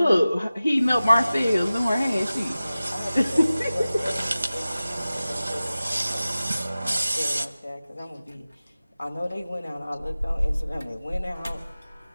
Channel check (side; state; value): both; inverted; correlation -0.96